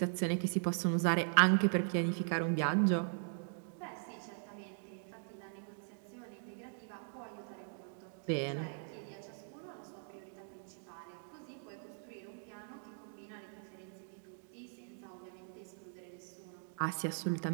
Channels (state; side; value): silent; left; digital silence